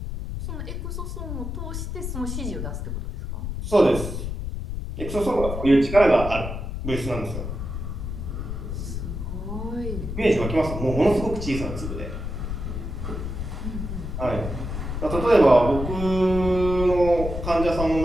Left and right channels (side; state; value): left; noise; rumble, 5 dB below the sound